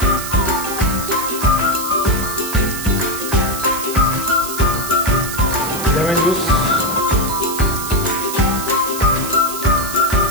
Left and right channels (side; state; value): right; noise; hiss, 7 dB below the sound